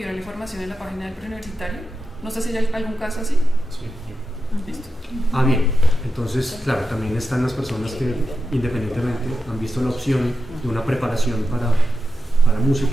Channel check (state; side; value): normal; both; correlation 0.89